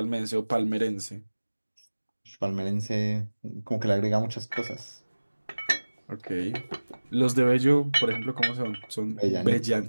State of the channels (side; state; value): both; inverted; correlation -1.00